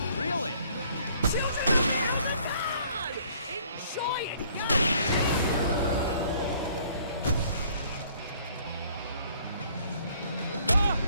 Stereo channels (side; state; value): both; inverted; correlation -0.60